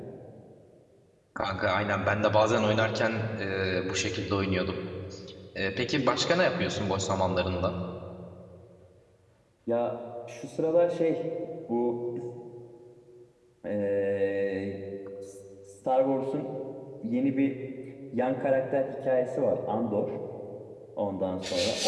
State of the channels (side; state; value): both; identical; correlation 1.00